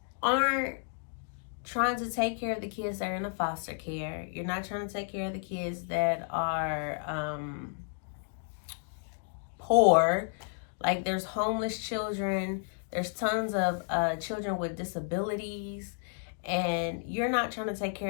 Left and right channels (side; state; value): right; silent; 57 dB below the other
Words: aren't trying to take care of the kids that are in a foster care. You're not trying to take care of the kids that are poor. Like, there's homeless children. There's tons of children with disabilities. And you're not trying to take